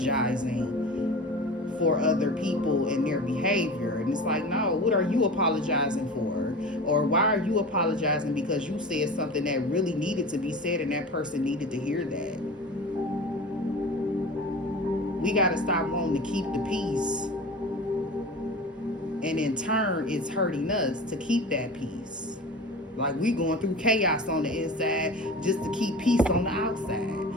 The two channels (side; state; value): both; normal; correlation 0.33